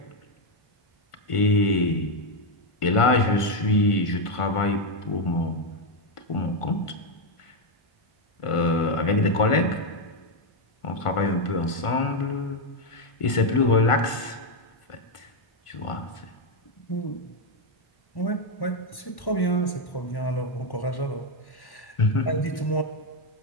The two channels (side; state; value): right; late; 1.5 ms